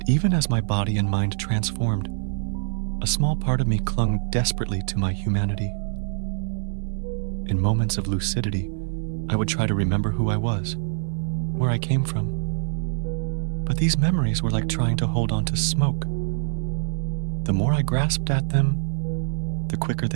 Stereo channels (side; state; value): left; silent; digital silence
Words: even as my body and mind transformed, a small part of me clung desperately to my humanity. In moments of lucidity, I would try to remember who I was, where I came from. But these memories were like trying to hold on to smoke. The more I grasped at them, the quicker